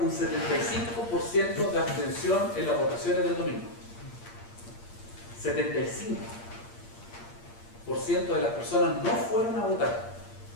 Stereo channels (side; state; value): right; late; 8.6 ms